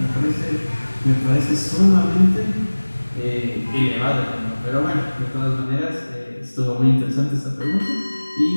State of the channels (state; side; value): inverted; both; correlation -1.00